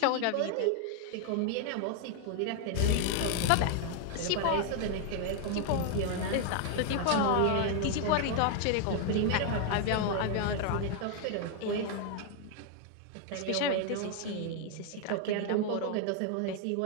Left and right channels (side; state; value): both; different; correlation 0.00